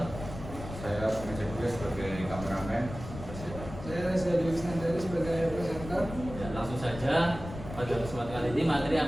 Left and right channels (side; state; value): left; noise; rumble, 11 dB below the sound